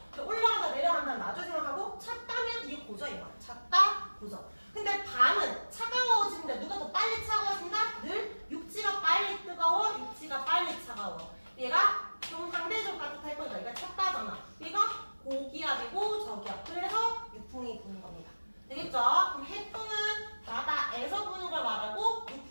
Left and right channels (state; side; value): inverted; both; correlation -1.00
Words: 올라간다 내려간다 나중에 생각하고 찼다면 이게 고저인 거야. 찼다 고저. 근데 밤은 차가워지는데 누가 더 빨리 차가워진다? 늘 육지가 빨리 뜨거워, 육지가 빨리 차가워. 얘가 좀 상대적으로 따뜻할 거니까 얘가 찼다잖아. 얘가 고기압이고 저기압. 그래서 육풍이 부는 겁니다. 되겠죠? 그럼 해풍은 바다에서 부는 걸 말하고